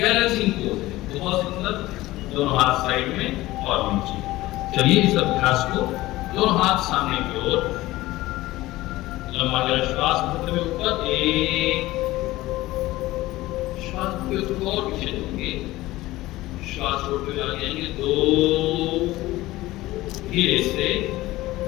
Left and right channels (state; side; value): quieter; right; 17.7 dB